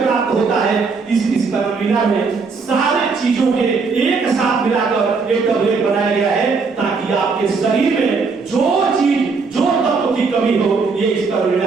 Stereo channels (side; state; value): left; quieter; 4.7 dB